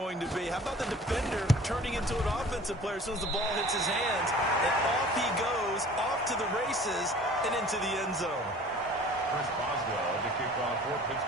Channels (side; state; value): both; normal; correlation 0.47